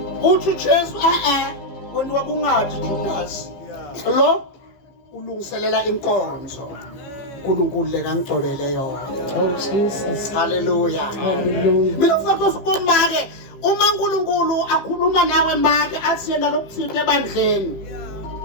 Uthi Jesu wena wakungathi Judas lo ulungiselela inkonzo uNkulunkulu lekangcobele yona. Oh, Jesus. Hallelujah. Hallelujah. Mina kufanele usibona ke uma uNkulunkulu akhuluma nawe manje athi yena lokuthithe ebandleni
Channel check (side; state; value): right; late; 15 ms